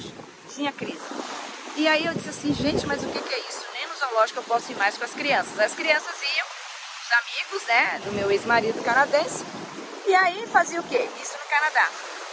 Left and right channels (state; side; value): identical; both; correlation 1.00